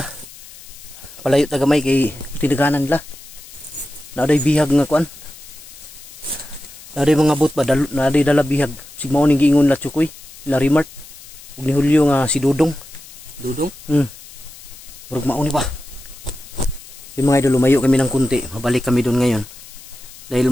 Palayo tagamay kay tinaganan nila. Naaday bihag nga kuan. Naaday mga bot ba naaday dala bihag. Sigmao ning giingon la Chukoy, la Rimart. Ug ni Julio nga si Dudong. Dudong? Murag mao ni ba. Yung mga idol lumayo kami ng kunti, mabalik kami doon ngayon. Dahil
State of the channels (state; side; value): noise; left; hiss, 18 dB below the sound